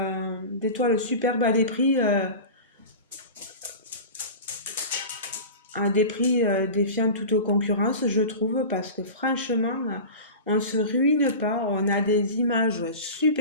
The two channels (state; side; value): inverted; both; correlation -0.32